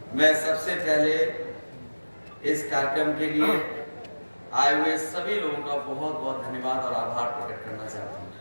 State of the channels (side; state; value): both; inverted; correlation -1.00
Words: मैं सबसे पहले इस कार्यक्रम के लिए आए हुए सभी लोगों का बहुत बहुत धन्यवाद और आभार प्रकट करना चाहता हूँ।